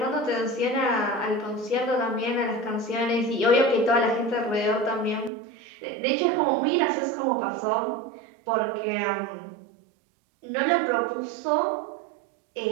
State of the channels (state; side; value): drops out; left; at 5.3 s